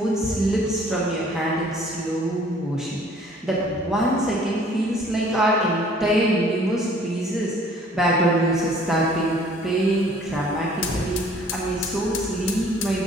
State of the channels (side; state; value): both; normal; correlation 0.55